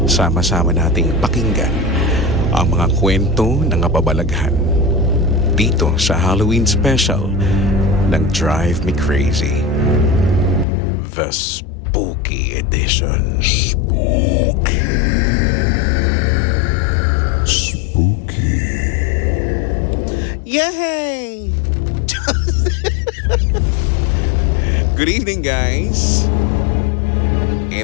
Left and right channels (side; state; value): right; drops out; at 10.7 s